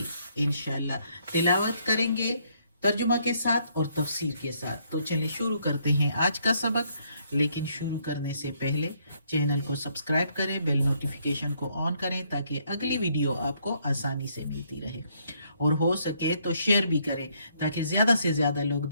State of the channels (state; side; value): inverted; both; correlation -0.70